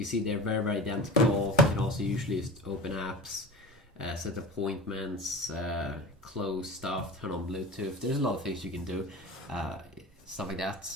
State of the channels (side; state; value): both; normal; correlation 0.34